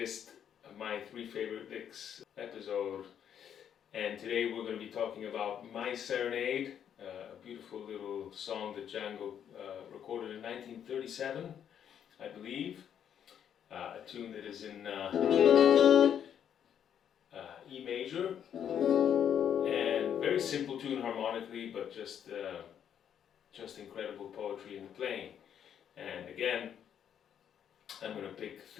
My Three Favorite Licks episode. And today we're going to be talking about My Serenade, a beautiful little song that Django recorded in 1937, I believe. A tune that is in E major, and very simple tune harmonically, but just incredible poetry in the playing. And again, I'm going to pick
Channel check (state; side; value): quieter; right; 9.0 dB